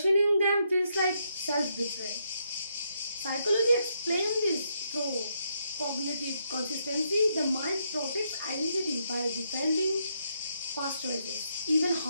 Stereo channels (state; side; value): inverted; both; correlation -0.77